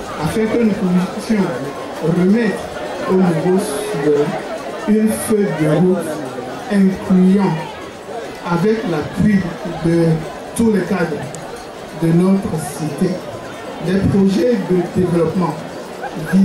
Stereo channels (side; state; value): both; identical; correlation 1.00